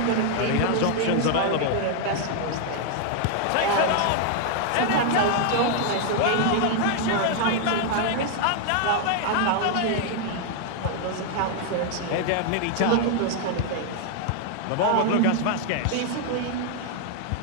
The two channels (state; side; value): different; both; correlation 0.00